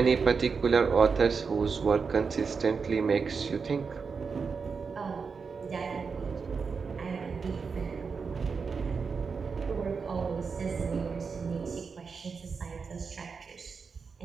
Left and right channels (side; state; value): left; quieter; 5.3 dB